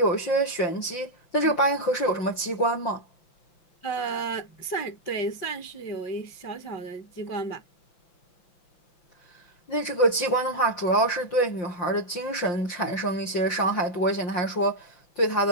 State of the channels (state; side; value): late; right; 5.6 ms